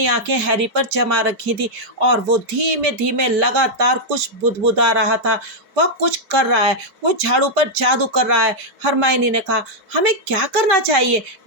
आंखें हैरी पर जमा रखी थी और वो धीमे धीमे लगातार कुछ बुदबुदा रहा था। वह कुछ कर रहा है, वो झाड़ू पर जादू कर रहा है। हरमाइनी ने कहा, हमें क्या करना चाहिए?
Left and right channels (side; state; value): left; late; 5.1 ms